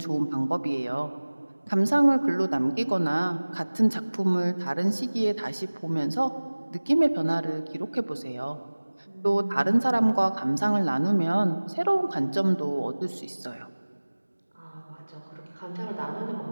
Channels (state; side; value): inverted; both; correlation -1.00